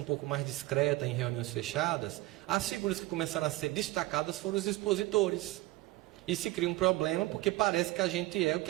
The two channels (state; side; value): quieter; left; 19.1 dB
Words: pouco mais discreta em reuniões fechadas, as figuras que começaram a ser destacadas foram os expositores. E se cria um problema porque parece que a gente é o que